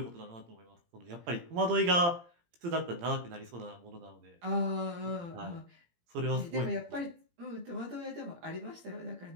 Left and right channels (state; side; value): late; left; 17 ms